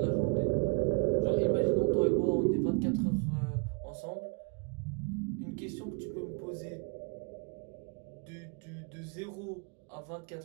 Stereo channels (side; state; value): left; quieter; 35.0 dB